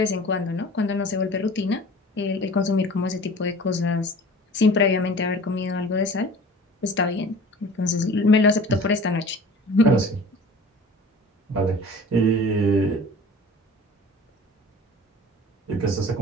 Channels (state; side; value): normal; both; correlation 0.42